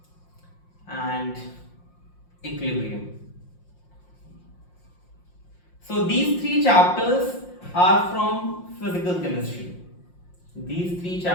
and equilibrium. So these 3 chapters are from physical chemistry. These 3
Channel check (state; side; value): late; right; 5.7 ms